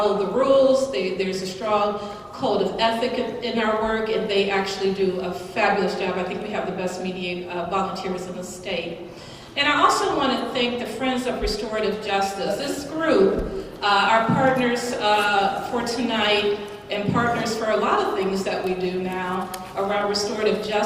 the rules. There's a strong code of ethic in our work, and they actually do a fabulous job. I think we have the best volunteers in the state. And I also want to thank the Friends of Restorative Justice. This group, our partners for tonight and partners for a lot of things that we do now around restorative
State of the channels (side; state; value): both; identical; correlation 1.00